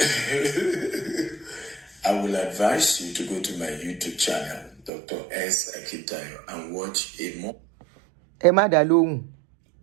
I will advise you to go to my YouTube channel, Dr. S. Akitayo, and watch a more. Emma Dalong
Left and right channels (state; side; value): drops out; left; at 4.9 s